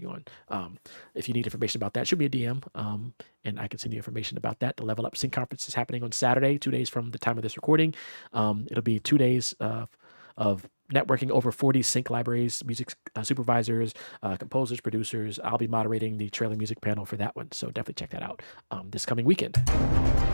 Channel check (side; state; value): both; inverted; correlation -1.00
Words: on. If you need information about that, shoot me a DM, and I can send you information about that. The Level Up Sync Conference is happening on Saturday, 2 days from the time of this recording. It'll be 2 days of networking over 40 sync libraries, music supervisors, composers, producers. I'll be moderating the trailer music panel for that one, so definitely check that out this coming weekend.